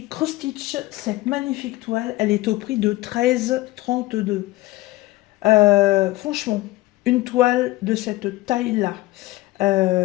Cross Stitch, cette magnifique toile, elle est au prix de 13,32. Franchement, une toile de cette taille-là,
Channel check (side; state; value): right; quieter; 19.0 dB